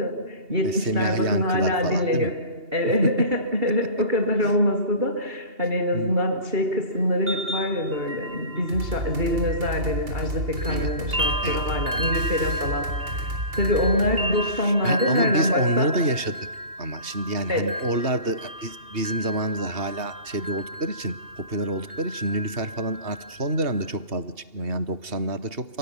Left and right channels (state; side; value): late; left; 2.8 ms